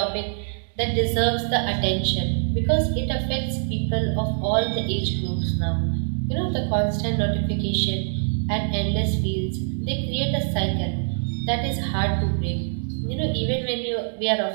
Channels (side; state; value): left; silent; digital silence